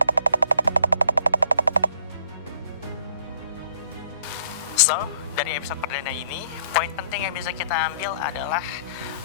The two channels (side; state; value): both; inverted; correlation -0.62